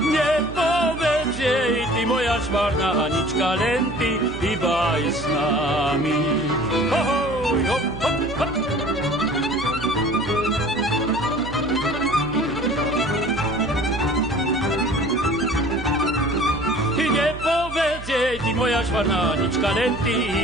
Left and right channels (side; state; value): right; noise; hum, 12 dB below the sound